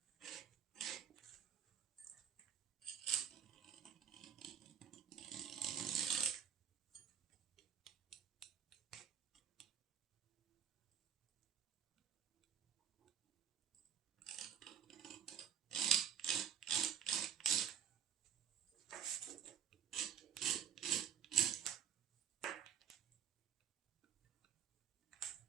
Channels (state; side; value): quieter; left; 8.6 dB